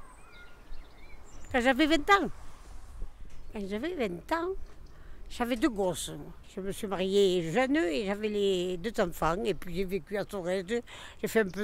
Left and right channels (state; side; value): identical; both; correlation 1.00